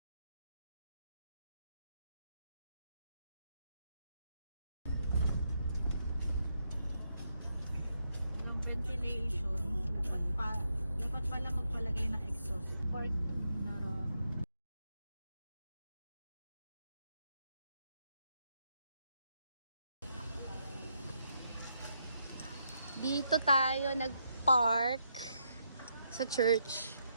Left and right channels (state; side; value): inverted; both; correlation -0.80